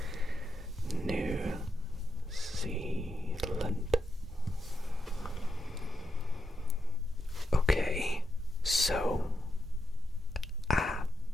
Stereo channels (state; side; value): normal; both; correlation 0.84